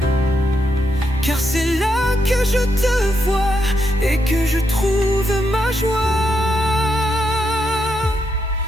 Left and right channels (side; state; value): both; normal; correlation 0.81